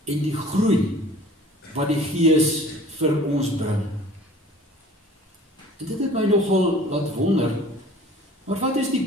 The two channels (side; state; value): both; normal; correlation 0.47